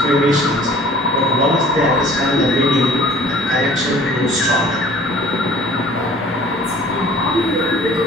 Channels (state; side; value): normal; both; correlation 0.51